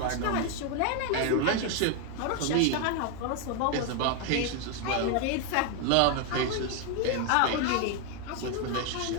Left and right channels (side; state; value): both; different; correlation 0.01